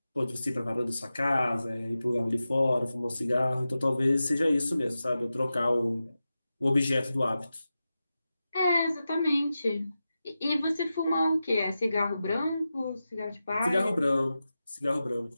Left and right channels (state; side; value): inverted; both; correlation -0.92